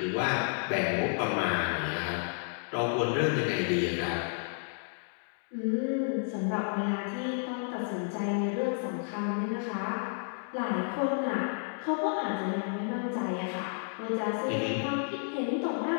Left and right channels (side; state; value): right; silent; 57 dB below the other